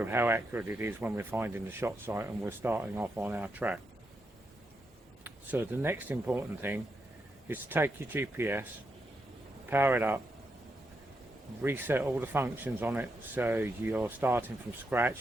how accurate it is when we're finding the shot site and we're starting off on our track. So the next important thing is to take your GPS, power it up, reset all the functions on it, so you're starting from scratch.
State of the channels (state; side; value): normal; both; correlation 0.83